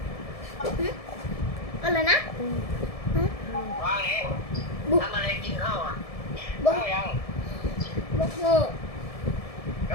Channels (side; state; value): right; late; 1.7 ms